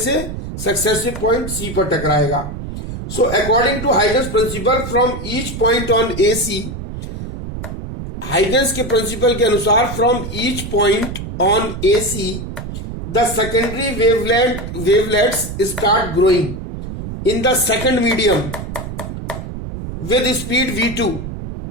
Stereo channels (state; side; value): noise; right; rumble, 8 dB below the sound